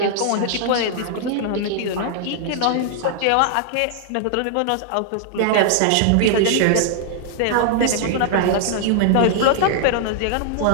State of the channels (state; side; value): different; both; correlation -0.01